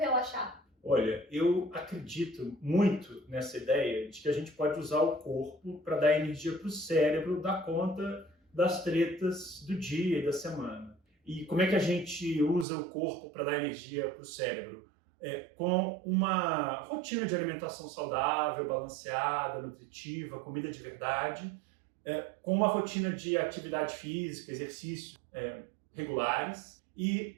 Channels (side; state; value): left; drops out; at 12.7 s